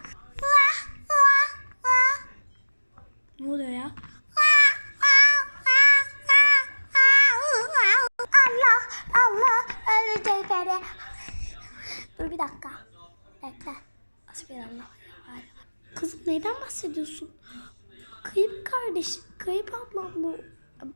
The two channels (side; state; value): both; inverted; correlation -1.00